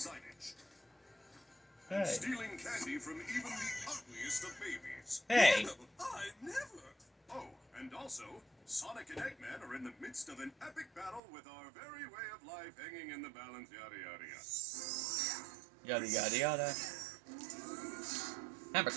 Hey. Stealing candy from even the ugliest of babies. Hey. No, I never. Oh, and also, Sonic and Eggman are in the midst of an epic battle with our very way of life hanging in the balance, yada yada yada. Yada yada yada. Hammer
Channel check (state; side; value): drops out; left; at 11.2 s